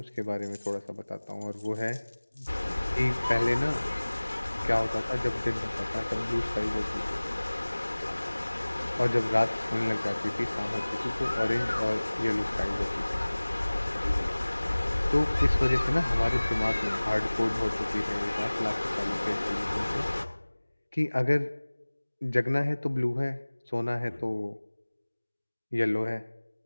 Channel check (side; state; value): both; inverted; correlation -1.00